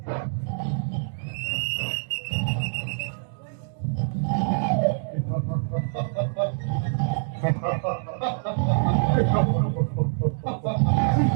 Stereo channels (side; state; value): left; silent; digital silence